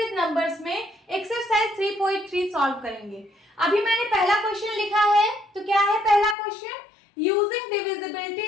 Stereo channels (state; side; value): drops out; right; at 6.4 s